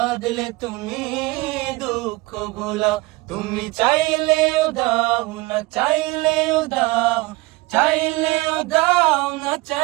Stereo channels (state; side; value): quieter; left; 22.7 dB